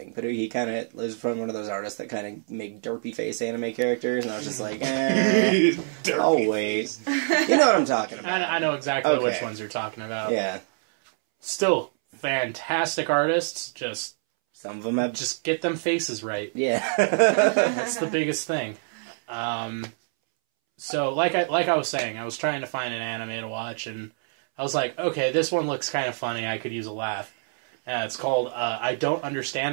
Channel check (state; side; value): silent; left; 61 dB below the other